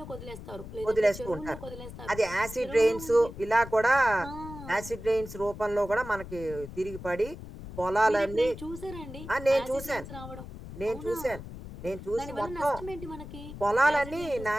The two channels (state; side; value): noise; left; rumble, 12 dB below the sound